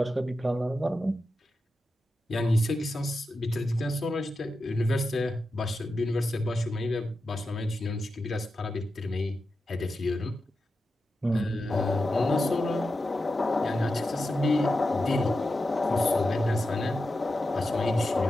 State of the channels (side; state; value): both; normal; correlation 0.90